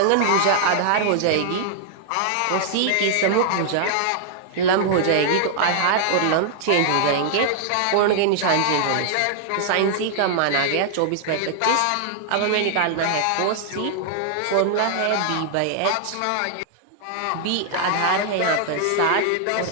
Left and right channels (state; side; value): different; both; correlation -0.01